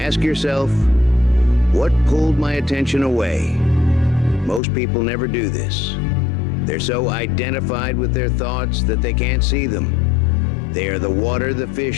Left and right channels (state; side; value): drops out; right; at 4.6 s